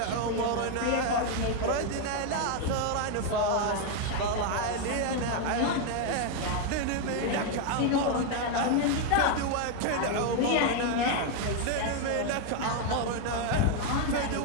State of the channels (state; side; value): different; both; correlation 0.01